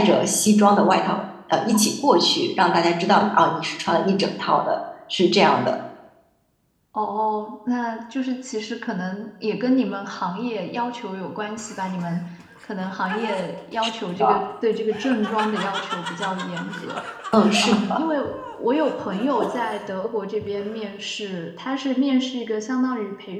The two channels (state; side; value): identical; both; correlation 1.00